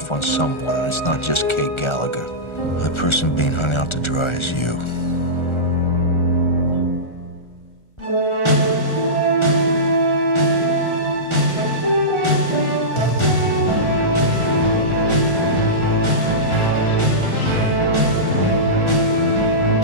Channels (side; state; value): right; late; 1.4 ms